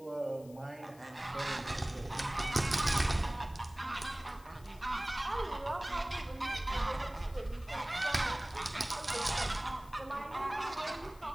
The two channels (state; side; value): noise; left; hiss, 24 dB below the sound